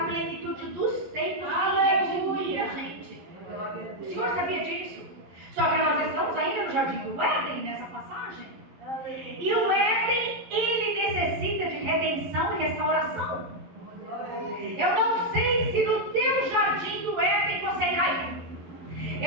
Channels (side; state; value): left; late; 11 ms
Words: plenitude dos tempos redimir a gente. O Senhor sabia disso. Só que nós estamos ainda no jardim do Éden, nessa passagem. E o Éden, ele necessita de redenção e restauração. Eu não sei se no teu jardim do Éden você caiu.